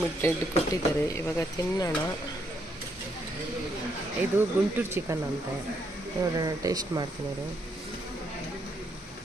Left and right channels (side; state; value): both; normal; correlation 0.75